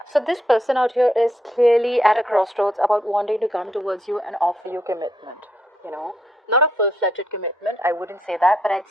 So this person out here is clearly at a crossroads about wanting to come towards you and offer you commitment. You know, not a full-fledged commitment. I wouldn't say that, but I'd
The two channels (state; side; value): normal; both; correlation 0.76